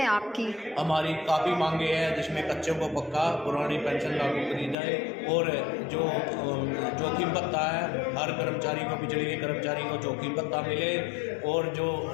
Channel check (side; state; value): right; drops out; at 4.8 s